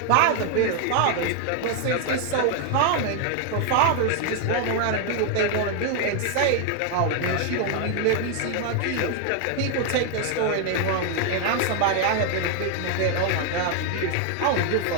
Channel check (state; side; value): different; both; correlation 0.00